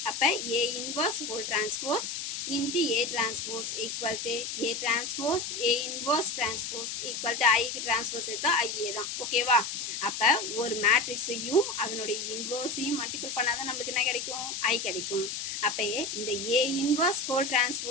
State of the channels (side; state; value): left; noise; hiss, 5 dB below the sound